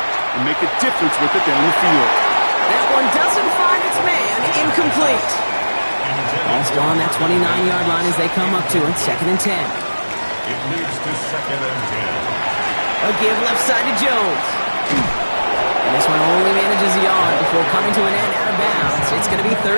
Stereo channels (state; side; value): inverted; both; correlation -1.00